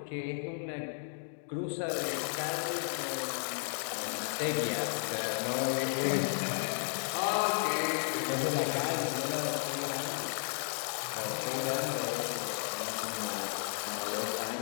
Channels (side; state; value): right; silent; digital silence